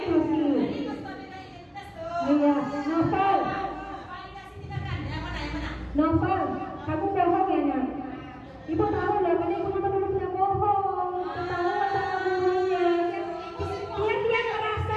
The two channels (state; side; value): identical; both; correlation 1.00